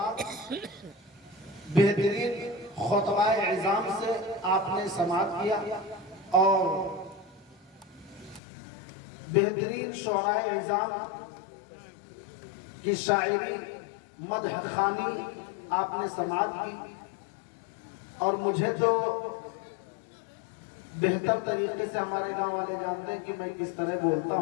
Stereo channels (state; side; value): drops out; right; at 8.4 s